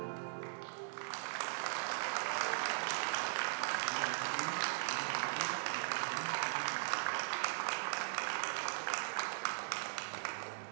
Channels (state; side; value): silent; left; digital silence